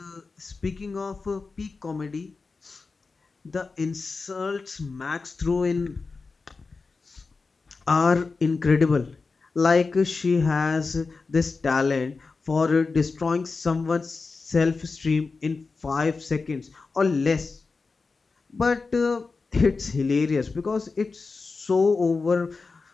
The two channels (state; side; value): quieter; right; 4.2 dB